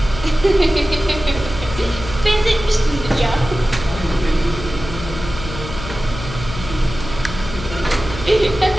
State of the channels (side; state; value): left; noise; hum, 10 dB below the sound